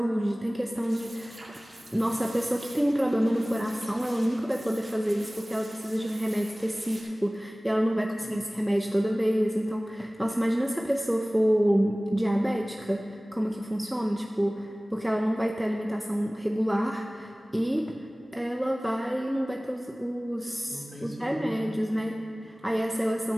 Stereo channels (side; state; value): both; normal; correlation 0.98